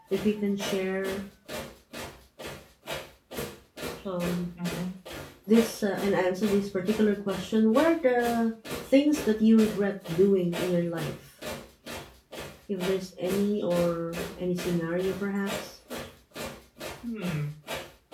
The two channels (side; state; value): both; identical; correlation 1.00